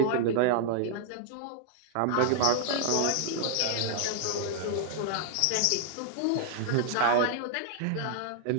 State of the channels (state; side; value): different; both; correlation -0.01